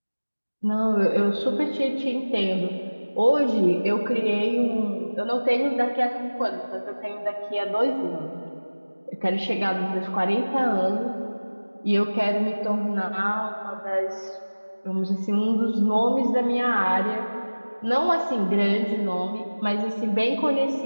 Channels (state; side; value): inverted; both; correlation -1.00